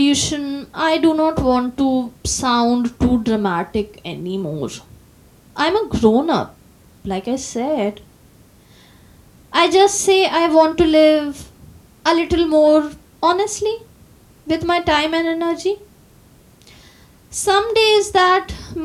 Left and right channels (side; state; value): both; identical; correlation 1.00